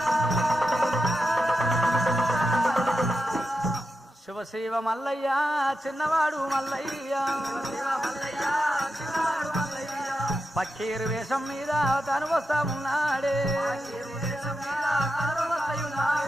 శివ మల్లయ్య చిన్నవాడు మల్లయ్య పక్కీరు వేషం మీద తను వస్తా ఉన్నాడే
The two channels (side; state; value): both; normal; correlation 0.88